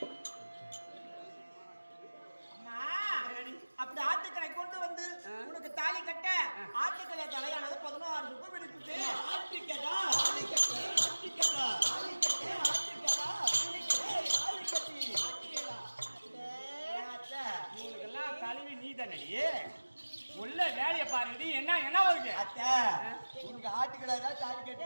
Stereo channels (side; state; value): both; inverted; correlation -1.00